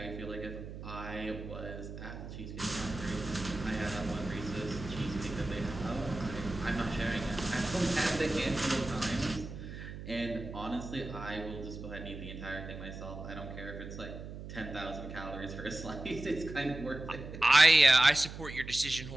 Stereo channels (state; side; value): noise; right; hum, 10 dB below the sound